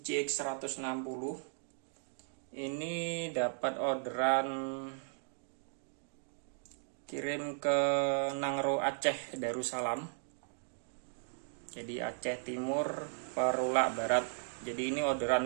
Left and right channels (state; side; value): silent; left; digital silence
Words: 160. Ini dapat orderan kirim ke Nangro Aceh Darussalam. Jadi Aceh Timur Perulak Barat. Jadi ini